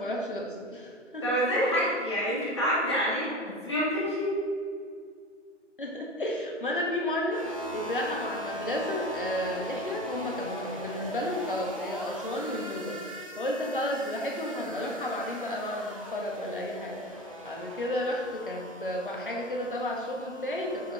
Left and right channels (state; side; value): normal; both; correlation 0.31